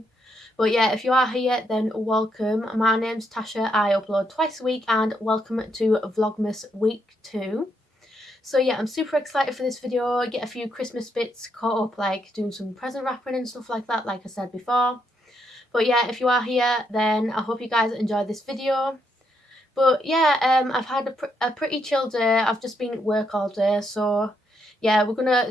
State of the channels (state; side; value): normal; both; correlation 0.77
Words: But yeah, if you are here, then welcome. My name's Tasha. I upload twice a week, and welcome to Vlogmas week 2. So yeah, I'm super excited for this video. Get a few Christmas bits caught up, like doing some present wrapping and stuff like that, like I said before. But yeah, if you are here, then I hope you guys enjoy this video. But yeah, I've had a pretty chill day. I've just been at work all day, so yeah, we're gonna